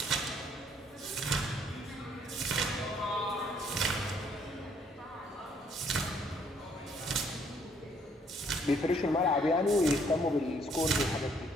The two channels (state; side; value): normal; both; correlation 0.66